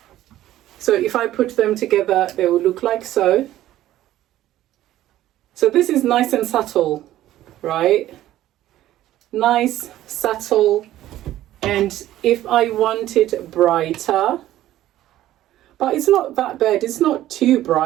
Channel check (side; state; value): left; quieter; 13.8 dB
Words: So if I put them together, they will look like so. So this is nice and subtle, right? Nice, subtle, and if I want it brighter, but it's not that bad, it's not too